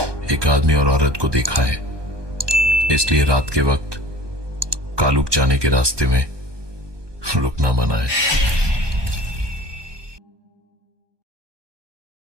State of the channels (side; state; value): left; late; 1.2 ms